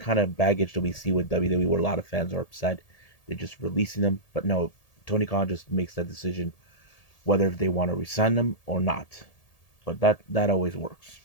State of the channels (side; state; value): right; late; 1.8 ms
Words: of baggage that we see with WWE, where a lot of fans are upset. They're just releasing them, but no, Tony Khan just makes that decision whether they want to resign them or not. But that always works.